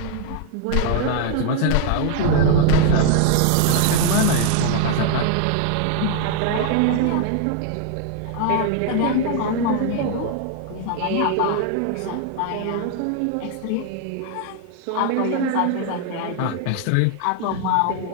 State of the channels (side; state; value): both; different; correlation 0.00